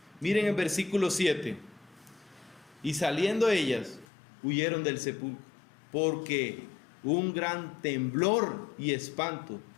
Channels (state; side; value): drops out; right; at 4.0 s